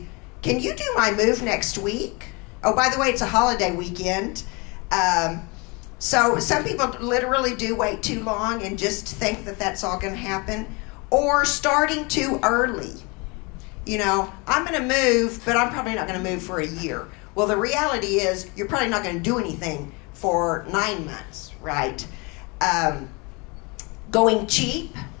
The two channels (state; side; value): quieter; right; 28.9 dB